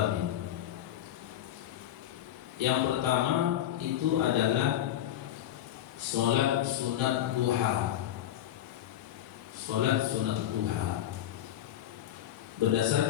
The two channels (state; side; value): quieter; right; 11.9 dB